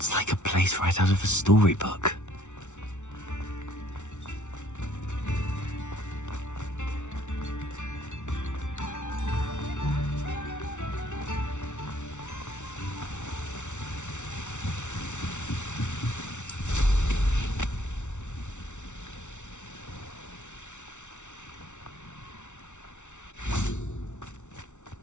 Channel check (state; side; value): late; right; 0.84 ms